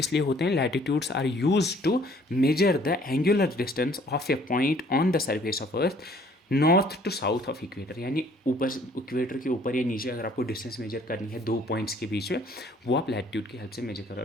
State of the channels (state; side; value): normal; both; correlation 0.58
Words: लिए होते हैं, latitudes are use to measure the angular distance of a point on the surface of earth north to south of equator, यानी ऊपर इक्वेटर के ऊपर या नीचे अगर आपको डिस्टेंस मेजर करनी है दो पॉइंट्स के बीच में, वो आप लैटिट्यूड की हेल्प से मेजर करो।